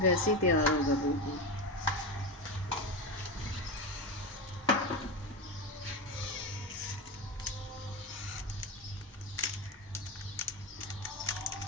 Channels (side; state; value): both; normal; correlation 0.18